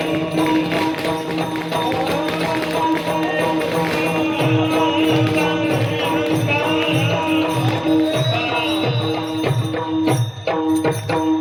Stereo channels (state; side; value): identical; both; correlation 1.00